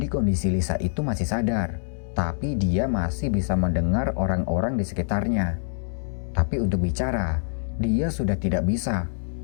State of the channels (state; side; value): silent; right; 62 dB below the other